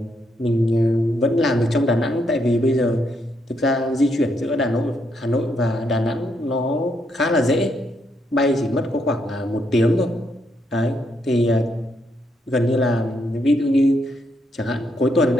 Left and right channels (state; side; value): normal; both; correlation 0.76